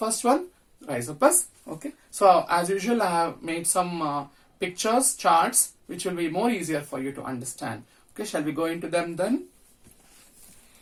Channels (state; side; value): identical; both; correlation 1.00